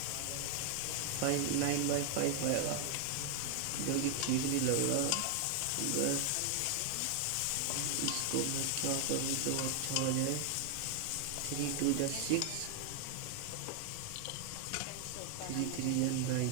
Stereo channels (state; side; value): different; both; correlation 0.00